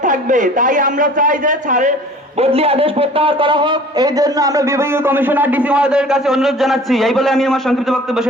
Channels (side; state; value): both; normal; correlation 0.47